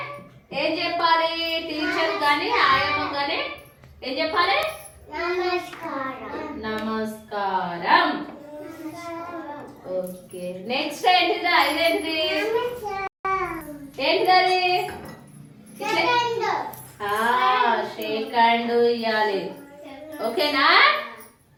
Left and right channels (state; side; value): identical; both; correlation 1.00